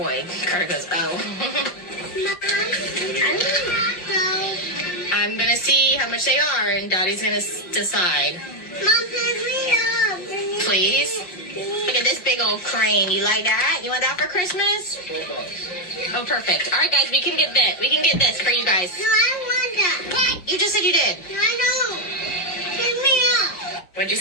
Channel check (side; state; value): right; late; 5.6 ms